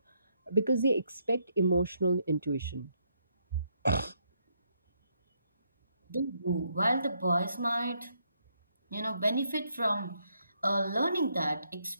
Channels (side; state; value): both; inverted; correlation -0.75